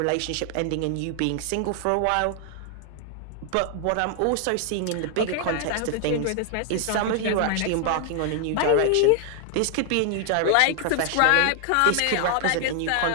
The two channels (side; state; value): both; different; correlation 0.00